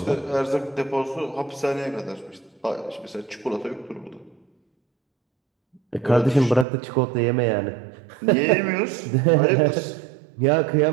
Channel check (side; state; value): left; drops out; at 6.7 s